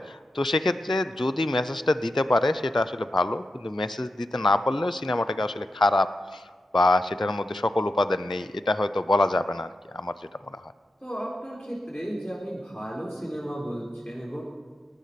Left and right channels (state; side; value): normal; both; correlation 0.89